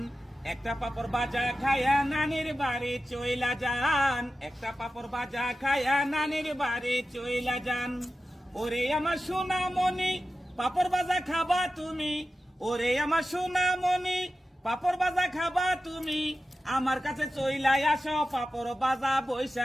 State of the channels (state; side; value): normal; both; correlation 0.93